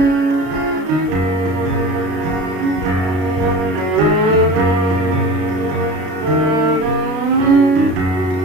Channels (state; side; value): late; left; 33 ms